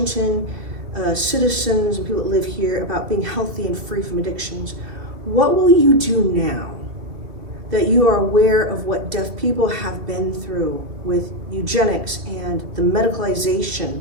citizens and people that live here about being healthy and free from addictions, what will you do now that you are aware of what deaf people have been through with eugenics and the medicalization,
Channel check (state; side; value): late; left; 2.5 ms